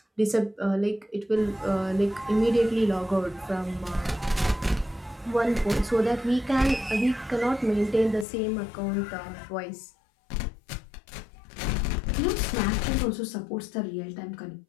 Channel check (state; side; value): drops out; right; at 8.2 s